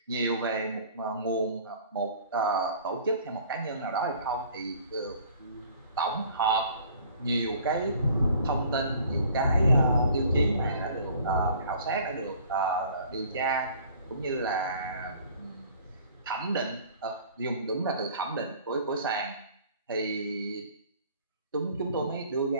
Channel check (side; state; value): both; inverted; correlation -0.52